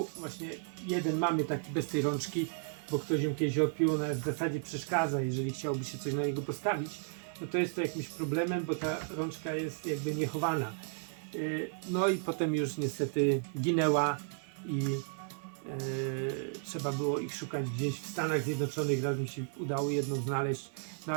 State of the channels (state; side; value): silent; left; 55 dB below the other